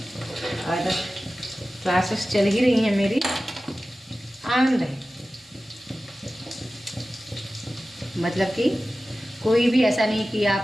और क्लासेस चल ही रही हैं मेरी, आनंद है। मतलब कि कोई भी ऐसा नहीं कि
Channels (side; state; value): both; normal; correlation 0.95